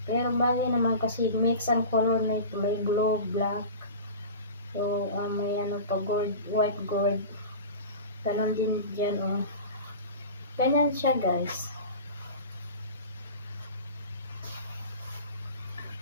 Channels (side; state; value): both; inverted; correlation -0.35